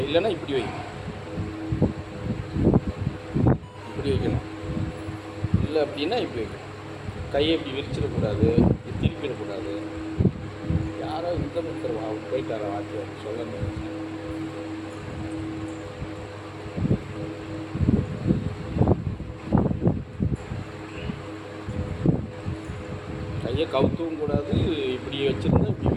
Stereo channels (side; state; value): both; identical; correlation 1.00